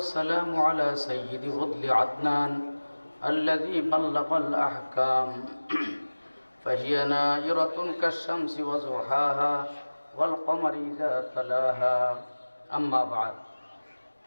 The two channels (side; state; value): both; inverted; correlation -1.00